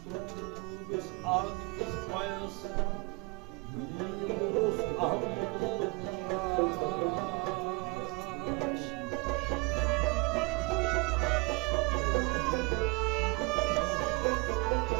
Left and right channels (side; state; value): left; quieter; 27.8 dB